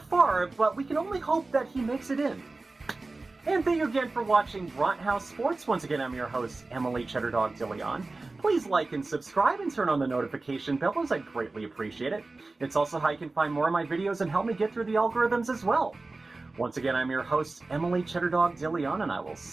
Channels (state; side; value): quieter; left; 3.4 dB